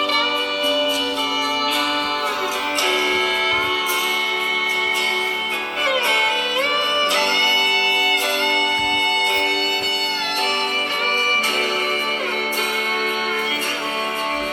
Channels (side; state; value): both; identical; correlation 1.00